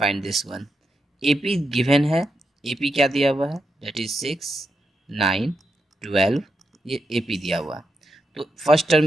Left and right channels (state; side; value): normal; both; correlation 0.84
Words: this one. AP given है, एपी क्या दिया हुआ है, दैट इज 6, 9, 12, ये एपी दिया हुआ है। तो फर्स्ट